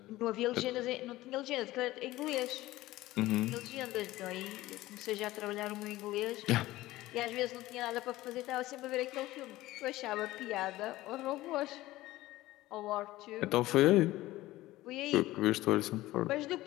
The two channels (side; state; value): right; quieter; 17.1 dB